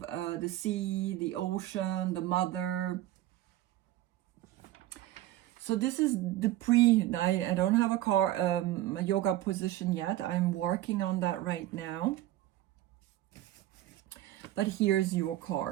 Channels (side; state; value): left; quieter; 14.6 dB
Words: the sea, the ocean, the mother. So this is the I don't have a yoga position yet. I'm working on that right now. But here's your